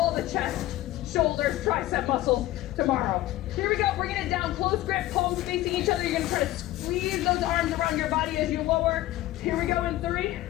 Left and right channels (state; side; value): quieter; right; 15.8 dB